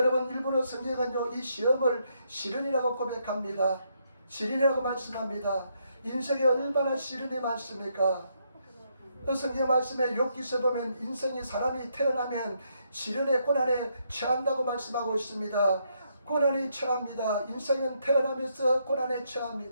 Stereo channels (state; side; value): inverted; both; correlation -0.76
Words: 일본어 성경은요, 이 시험을 시련이라고 고백합니다. 시련이라고 말씀합니다. 인생에 얼마나 시련이 많습니까? 그 성경 말씀에 욥기서 보면 인생이 사람이 태어나면 시련의 고난에 처한다고 말씀하고 있습니다. 고난이 처합니다. 인생은 태어나면서 고난에